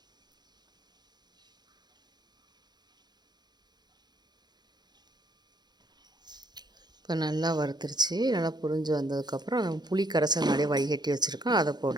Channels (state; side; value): late; left; 0.20 ms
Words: இப்போ நல்லா வறுத்துருச்சு. நல்லா பொரிஞ்சு வந்ததுக்கப்புறம் நம்ம புளி கரைசல் நிறைய வடிகட்டி வச்சுருக்கோம், அதை